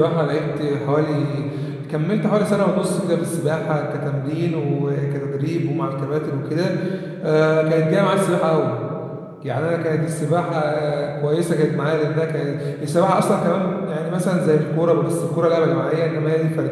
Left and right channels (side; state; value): both; identical; correlation 1.00